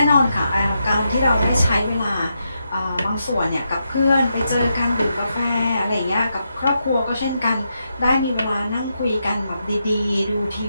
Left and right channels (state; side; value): inverted; both; correlation -0.84